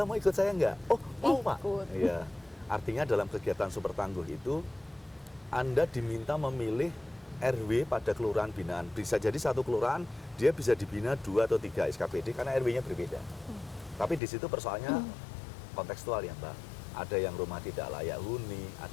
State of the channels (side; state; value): right; drops out; at 14.2 s